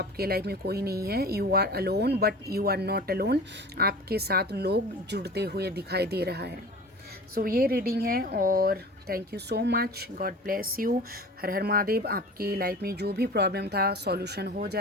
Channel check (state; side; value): normal; both; correlation 0.38